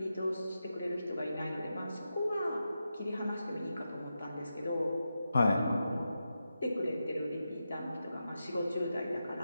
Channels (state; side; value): inverted; both; correlation -0.89